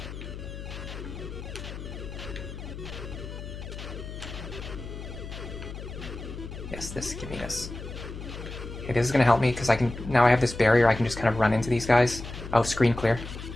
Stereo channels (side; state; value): left; noise; hum, 10 dB below the sound